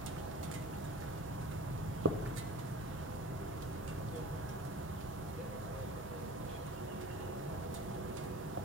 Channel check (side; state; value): both; normal; correlation 0.38